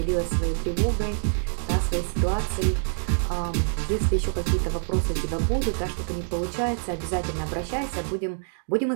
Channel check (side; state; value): left; silent; digital silence